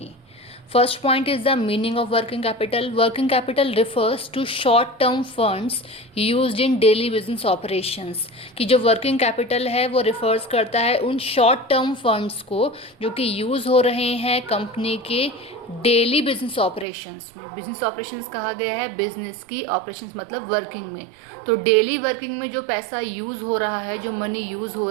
First point is the meaning of working capital. Working capital refers to short-term funds used in daily business operations. कि जो working capital है वो refers करता है उन short-term funds को जो कि use हो रहे हैं कंपनी के डेली बिजनेस ऑपरेशंस में. बिजनेस ऑपरेशंस कहा गया है बिजनेस की, ऑपरेशंस मतलब वर्किंग में. तो डेली वर्किंग में जो पैसा यूज़ हो रहा है, जो मनी यूज़ हो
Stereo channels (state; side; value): drops out; left; at 16.9 s